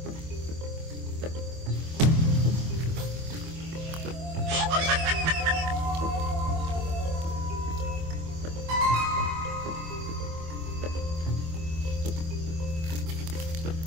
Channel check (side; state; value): left; late; 25 ms